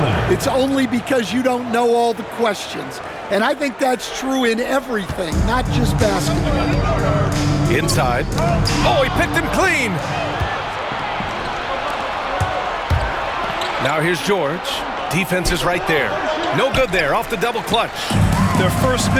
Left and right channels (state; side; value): identical; both; correlation 1.00